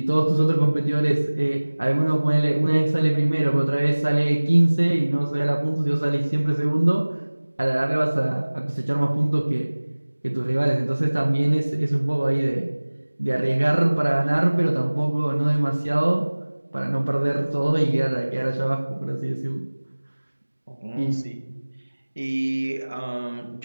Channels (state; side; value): inverted; both; correlation -1.00